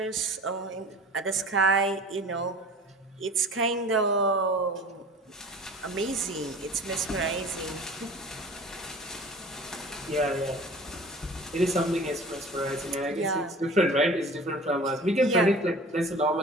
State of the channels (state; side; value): normal; both; correlation 0.41